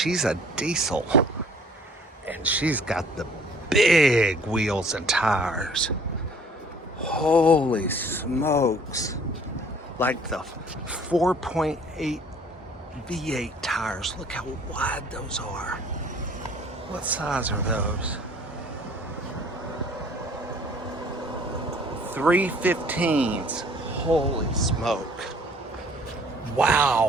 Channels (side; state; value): both; normal; correlation 0.54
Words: a diesel. And she's got the big wheels and tires. Holy smokes. Like the 4.8 V8 tires. Look how wide those are. What size are those? 315s. Holy smoke.